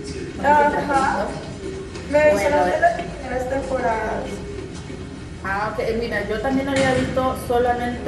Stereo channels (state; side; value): identical; both; correlation 1.00